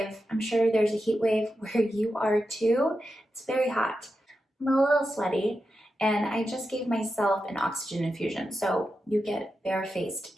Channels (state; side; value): normal; both; correlation 0.89